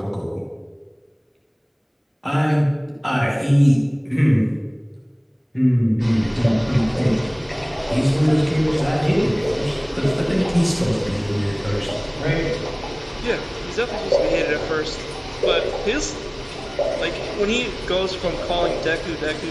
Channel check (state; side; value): identical; both; correlation 1.00